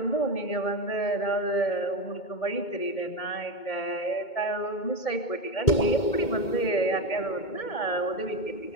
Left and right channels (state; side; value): late; right; 2.2 ms